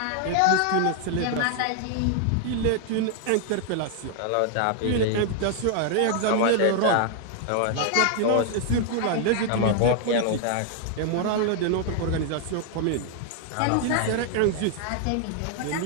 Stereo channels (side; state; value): both; different; correlation 0.00